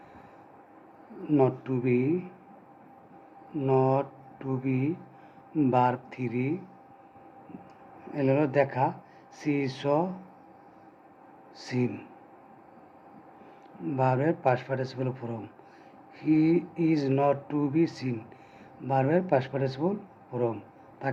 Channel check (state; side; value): identical; both; correlation 1.00